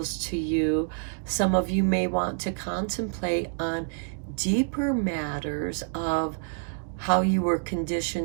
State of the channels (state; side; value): silent; left; digital silence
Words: to you. Some of you may want to contemplate on deeper matters of how you were